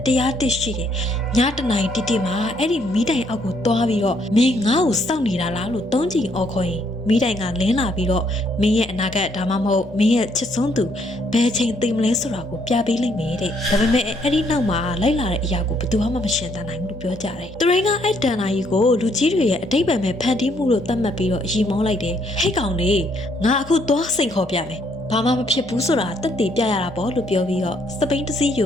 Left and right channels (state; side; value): normal; both; correlation 0.70